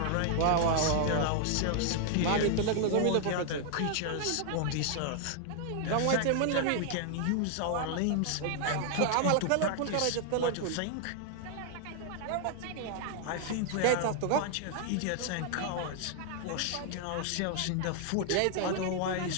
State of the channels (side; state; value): both; different; correlation 0.00